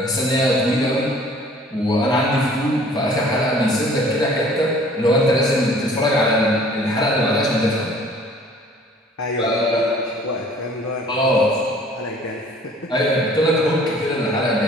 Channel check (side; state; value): both; normal; correlation 0.53